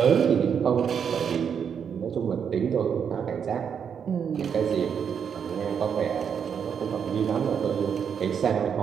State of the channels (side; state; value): left; quieter; 7.4 dB